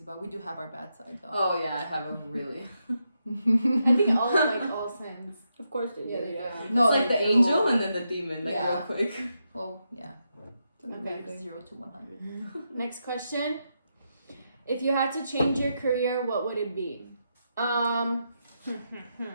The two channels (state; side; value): inverted; both; correlation -0.84